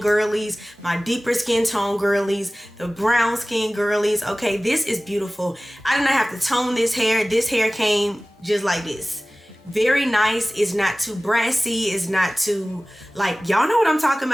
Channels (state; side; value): normal; both; correlation 0.98